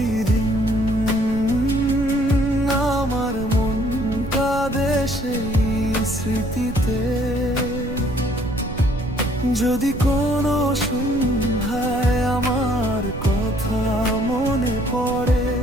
আমার মনটা দেশেই স্মৃতিতে। যদি কোনো সন্ধ্যায় আমার কথা মনে পড়ে,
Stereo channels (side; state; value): right; noise; rumble, 9 dB below the sound